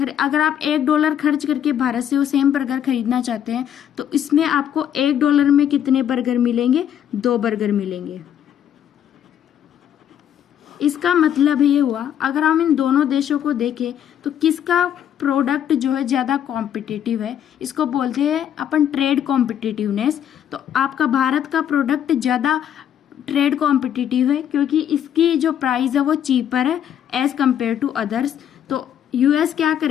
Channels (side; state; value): right; quieter; 9.7 dB